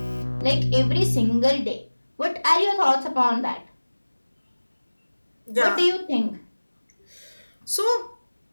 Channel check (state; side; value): inverted; both; correlation -1.00